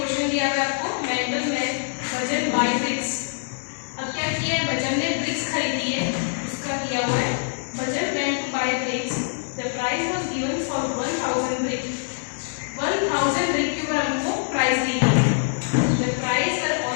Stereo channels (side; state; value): right; silent; digital silence